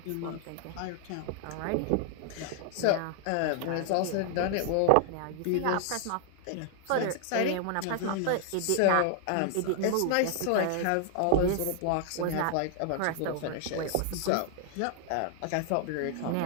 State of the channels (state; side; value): different; both; correlation -0.01